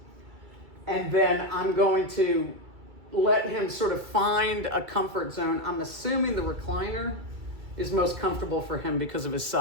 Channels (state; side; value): late; left; 2.3 ms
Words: And then I'm going to let him sort of find a comfort zone. I'm assuming the recliner is most comfortable for him because of his